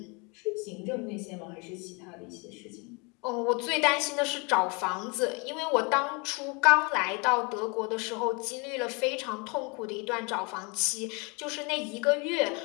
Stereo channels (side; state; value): right; quieter; 30.4 dB